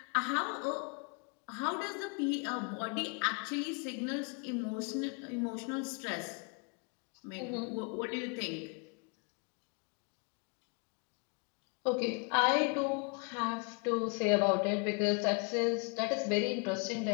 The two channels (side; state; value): right; quieter; 35.7 dB